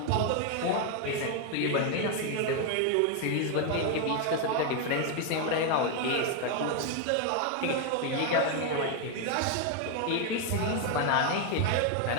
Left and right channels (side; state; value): both; different; correlation 0.01